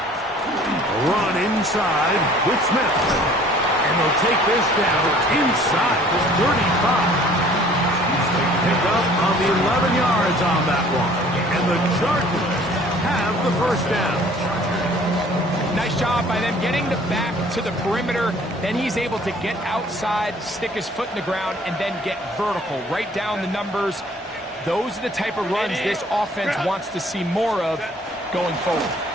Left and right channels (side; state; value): both; normal; correlation 0.54